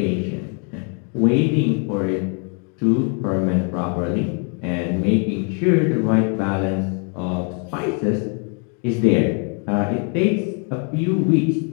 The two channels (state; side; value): quieter; right; 39.9 dB